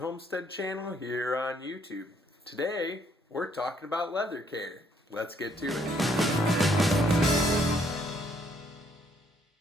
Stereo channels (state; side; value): normal; both; correlation 0.68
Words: channel here on YouTube. Today we're talking about leather care. Let's get to it.